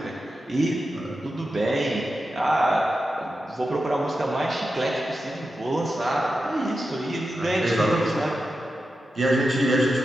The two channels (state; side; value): normal; both; correlation 0.90